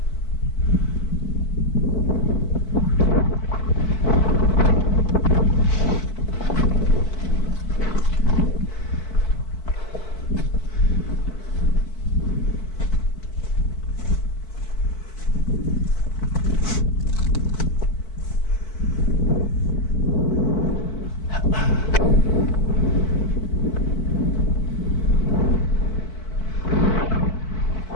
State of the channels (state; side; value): late; right; 4.6 ms